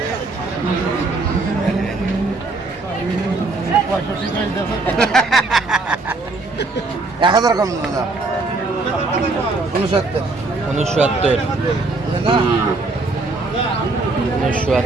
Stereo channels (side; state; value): left; quieter; 3.4 dB